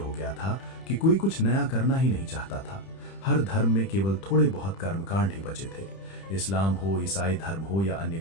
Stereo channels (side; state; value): right; late; 31 ms